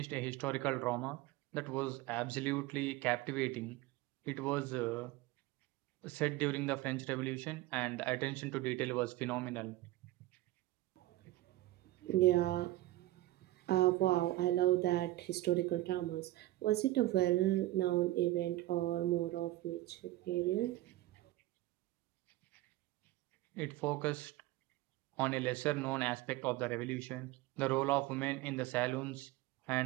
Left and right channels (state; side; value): quieter; left; 16.8 dB